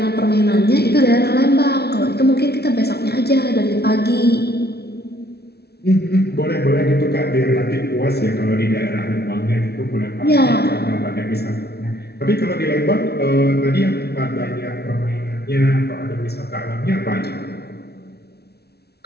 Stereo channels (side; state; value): right; late; 0.47 ms